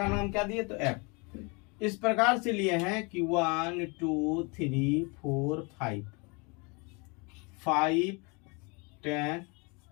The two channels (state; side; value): quieter; right; 30.4 dB